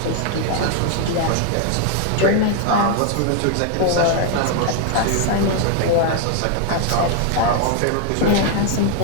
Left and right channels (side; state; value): both; different; correlation 0.00